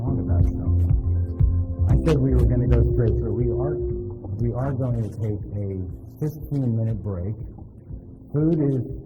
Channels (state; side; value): identical; both; correlation 1.00